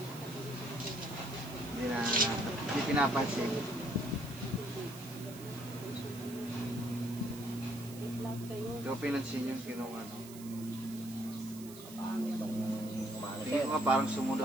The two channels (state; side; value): noise; right; hiss, 16 dB below the sound